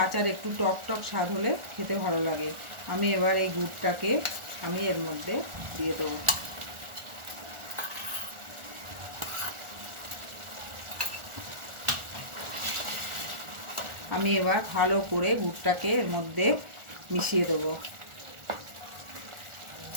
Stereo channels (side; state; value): left; late; 1.4 ms